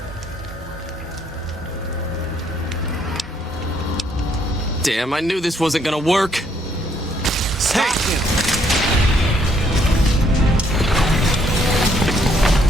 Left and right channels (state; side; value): normal; both; correlation 0.69